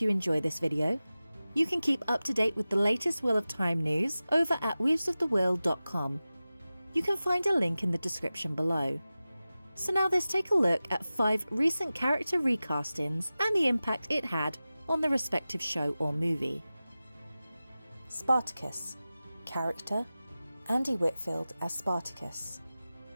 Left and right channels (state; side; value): inverted; both; correlation -0.96